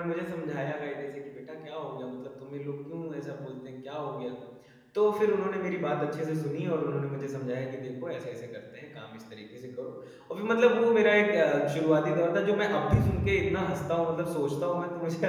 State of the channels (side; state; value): both; identical; correlation 1.00